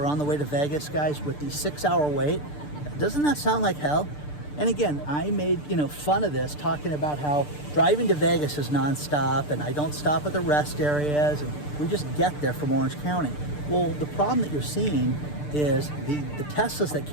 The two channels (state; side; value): late; right; 6.8 ms